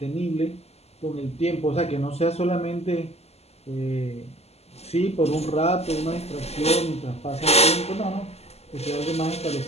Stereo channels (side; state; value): right; late; 0.30 ms